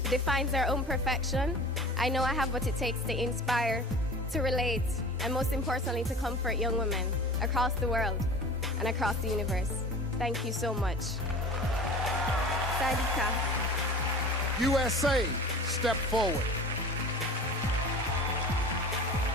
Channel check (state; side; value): normal; both; correlation 0.39